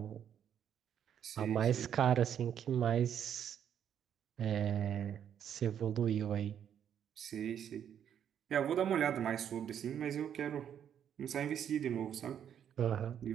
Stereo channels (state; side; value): quieter; left; 9.1 dB